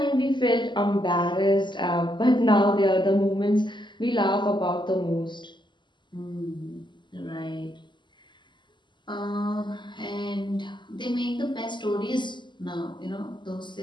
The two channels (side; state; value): right; late; 0.22 ms